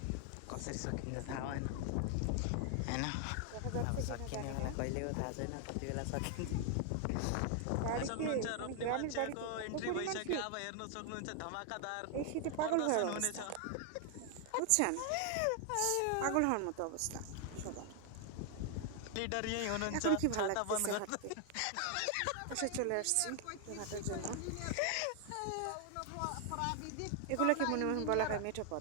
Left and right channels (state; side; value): different; both; correlation 0.00